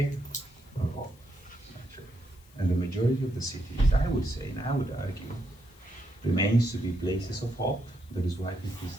or hope, actually. And the majority of the cities, I would say, and I would argue, remains to be places of hope. That is why people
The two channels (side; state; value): left; noise; hiss, 28 dB below the sound